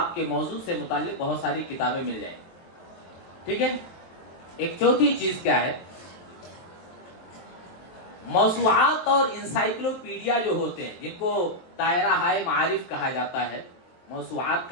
کے موضوع سے متعلق بہت ساری کتابیں مل جائیں، ٹھیک ہے۔ ایک چوتھی چیز کیا ہے، موسوعات اور انسائکلوپیڈیا جو ہوتے ہیں، جن کو دائرہ ہائے معارف کہا جاتا ہے، موسوعات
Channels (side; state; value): right; late; 23 ms